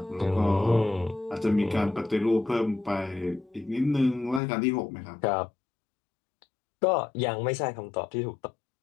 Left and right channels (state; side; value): drops out; right; at 4.4 s